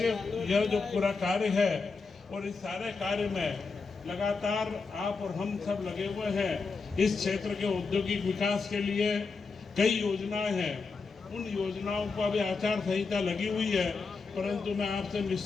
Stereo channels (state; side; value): quieter; right; 4.5 dB